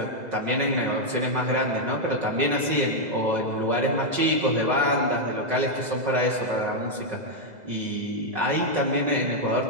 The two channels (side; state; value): left; late; 2.0 ms